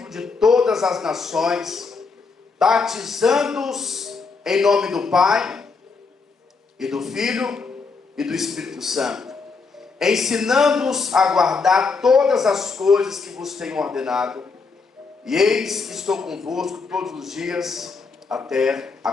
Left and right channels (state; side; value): quieter; right; 4.6 dB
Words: de todas as nações, batizando-os em nome do Pai, e do Filho, e do Espírito Santo, ensinando-os a guardar todas as coisas que vos tenho ordenado. E eis que estou convosco todos os dias, até a